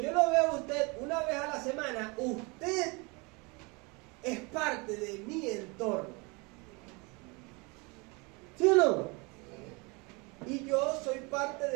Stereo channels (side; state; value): left; quieter; 28.6 dB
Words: yo lo vea a usted una vez a la semana, usted es parte de mi entorno. ¿Sí o no? Y yo soy parte